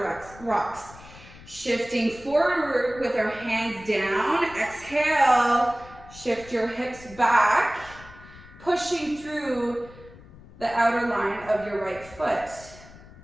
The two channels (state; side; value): noise; left; rumble, 20 dB below the sound